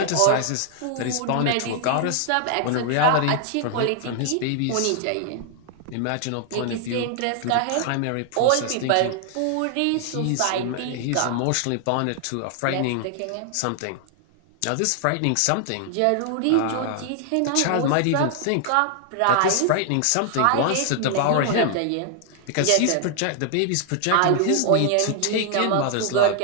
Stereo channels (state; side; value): different; both; correlation 0.00